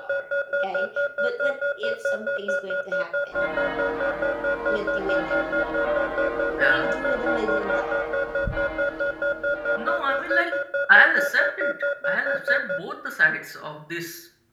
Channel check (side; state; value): both; identical; correlation 1.00